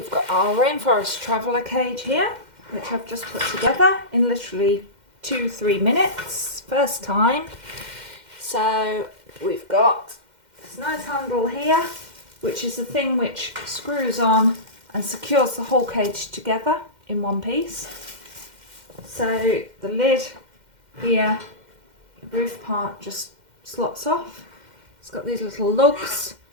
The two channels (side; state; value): left; late; 2.1 ms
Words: got our Rainforest traveller cage here, which I've just put together in literally 2-3 minutes, first time. So we've got this nice handle here, which is the thing which screws on and secures the whole cage together in one piece. So the lid here, the roof part just slots off. It's got these little lugs